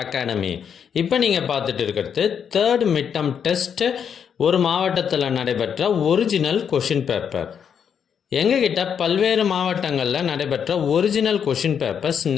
academy. இப்போ நீங்கள் பார்த்துட்டு இருக்கிறது தேர்ட் மிட்டம் டெஸ்ட் ஒரு மாவட்டத்தில் நடைபெற்ற ஒரிஜினல் கொஷின் பேப்பர். எங்ககிட்ட பல்வேறு மாவட்டங்களில் நடைபெற்ற ஒரிஜினல் கொஷின் பேப்பர்ஸ்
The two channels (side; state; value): right; quieter; 7.6 dB